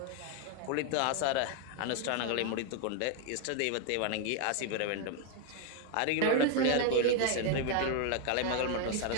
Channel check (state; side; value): different; both; correlation 0.00